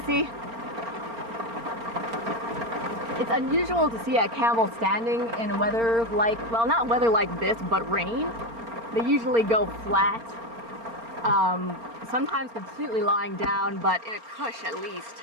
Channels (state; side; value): late; left; 4.3 ms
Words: It's unusual to see a camel standing in weather like, well, not weather like this, but rain. They usually go flat, sometimes completely lying down, but in a cush at least,